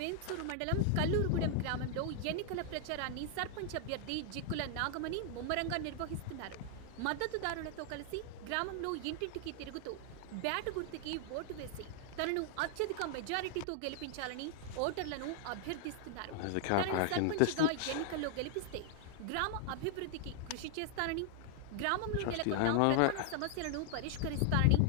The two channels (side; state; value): both; different; correlation 0.00